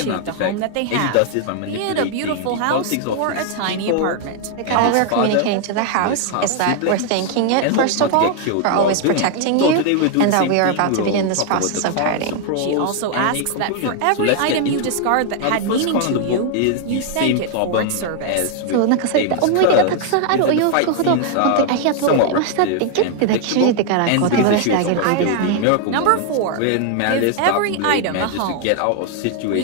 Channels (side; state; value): both; different; correlation 0.00